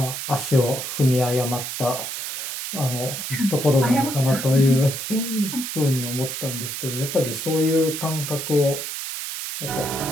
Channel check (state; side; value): noise; right; hiss, 5 dB below the sound